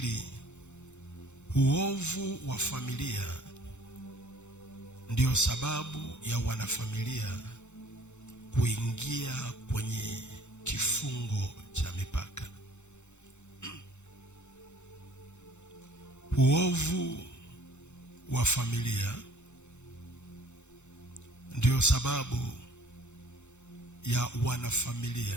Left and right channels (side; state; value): right; late; 0.83 ms